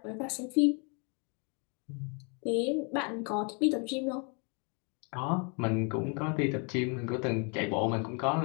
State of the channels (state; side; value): quieter; right; 35.5 dB